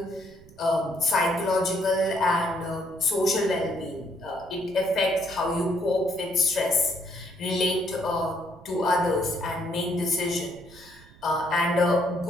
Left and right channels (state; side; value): noise; right; rumble, 24 dB below the sound